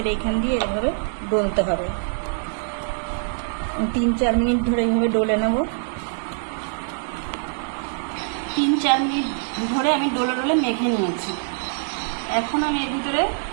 এইখান দিয়ে এভাবে ডলতে হবে। 3-4 মিনিট ধরে এইভাবে ডলে নেব। 3-4 মিনিট ধরে আমি ডলে ডলে মেখে নিয়েছি। এখন আমি এর ভিতরে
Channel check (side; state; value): left; silent; digital silence